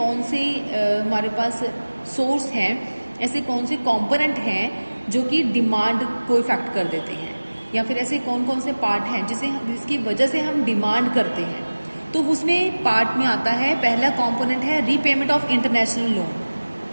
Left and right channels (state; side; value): inverted; both; correlation -1.00